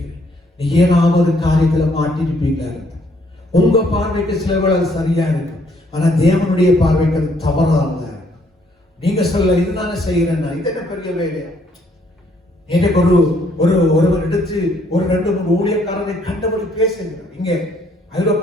நீ ஏதாவது காரியத்துல மாட்டிருப்பீங்களா? உங்க பார்வைக்கு சிலவர்கள் அது சரியா இருக்கும், ஆனா தேவனுடைய பார்வைக்கு அது தவறானதா இருக்கும். நீங்க சொல்ல இதுதானே செய்யறேன்னா இது என்ன பெரிய வேலையா? எனக்கு ஒருவர் எடுத்து ஒரு 2-3 ஊழியக்காரரை கண்டபடி பேசுகிறார். இங்க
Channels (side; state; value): both; normal; correlation 0.67